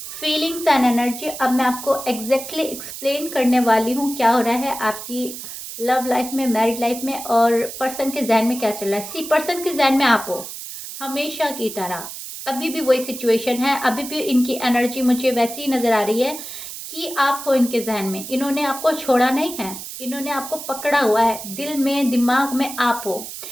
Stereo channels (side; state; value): right; noise; hiss, 10 dB below the sound